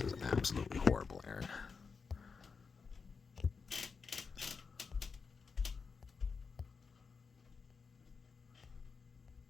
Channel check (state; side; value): quieter; right; 5.2 dB